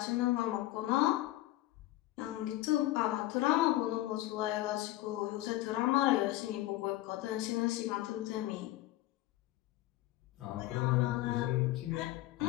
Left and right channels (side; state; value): right; quieter; 16.4 dB